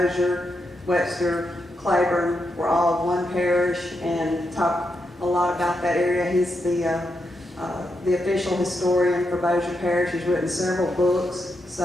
Webster, Claiborne were all one parish, and talk a lot about that area. He's the official historian for Bosu Parish. He's written several books,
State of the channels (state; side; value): normal; both; correlation 0.84